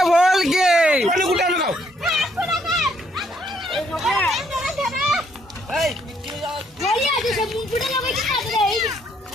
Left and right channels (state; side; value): normal; both; correlation 0.69